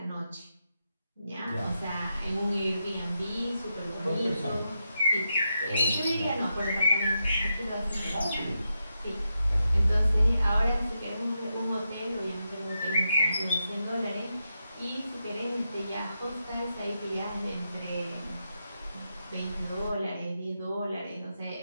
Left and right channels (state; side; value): inverted; both; correlation -0.86